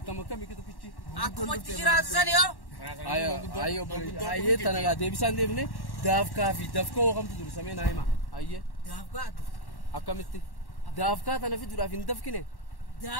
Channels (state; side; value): late; right; 1.1 ms